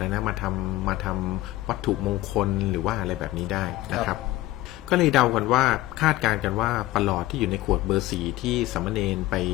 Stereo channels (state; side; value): quieter; right; 17.0 dB